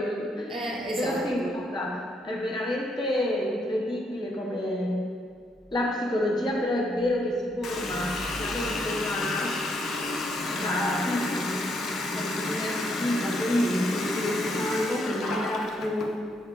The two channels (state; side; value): normal; both; correlation 0.74